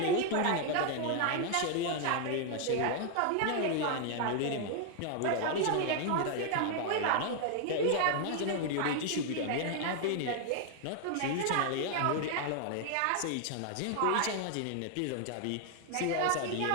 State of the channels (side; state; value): both; different; correlation 0.00